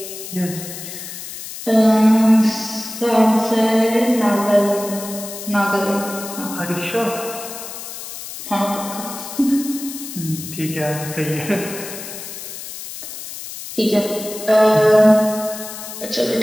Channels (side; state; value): left; noise; hiss, 10 dB below the sound